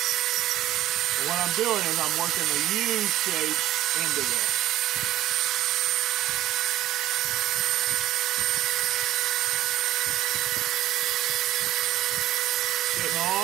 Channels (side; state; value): left; quieter; 13.9 dB